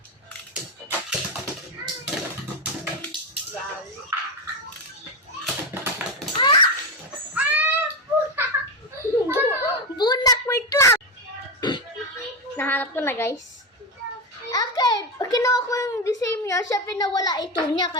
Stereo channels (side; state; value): both; normal; correlation 0.14